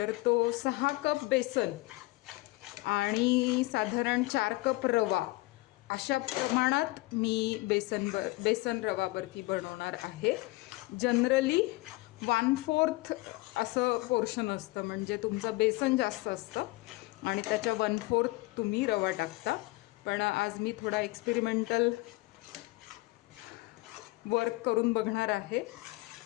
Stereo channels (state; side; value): quieter; right; 21.9 dB